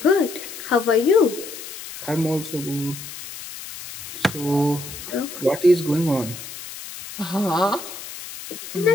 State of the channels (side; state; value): left; noise; hiss, 12 dB below the sound